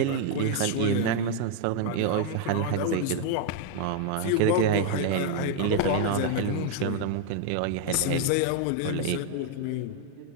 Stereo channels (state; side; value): different; both; correlation 0.00